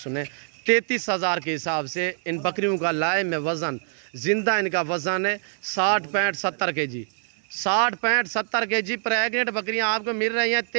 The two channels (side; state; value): left; silent; digital silence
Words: 33,000 के हिसाब से इन बकरियों का लाए में वज़न, ज़िंदा इनका वज़न है 60-65-70 kg। 60-65-70 kg प्रेग्नेंट बकरियां आपको मिल रही हैं